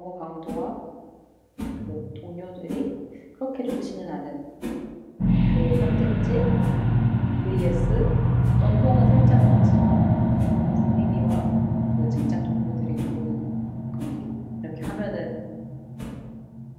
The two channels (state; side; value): identical; both; correlation 1.00